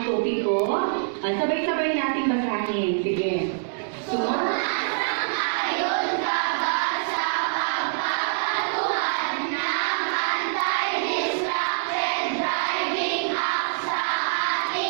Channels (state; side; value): silent; left; digital silence